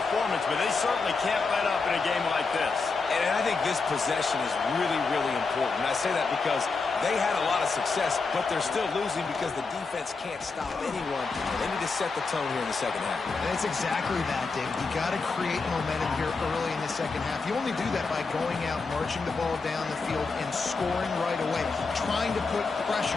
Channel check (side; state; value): right; quieter; 4.3 dB